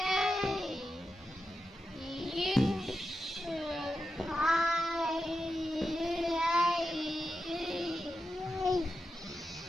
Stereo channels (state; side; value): normal; both; correlation 0.89